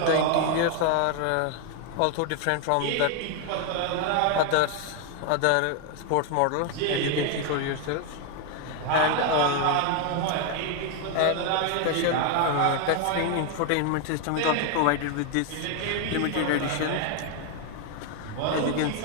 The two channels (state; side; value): different; both; correlation 0.01